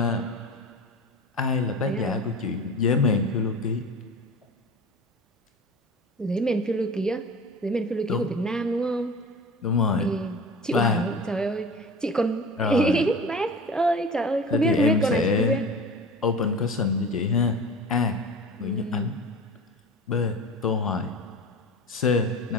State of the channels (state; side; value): normal; both; correlation 0.35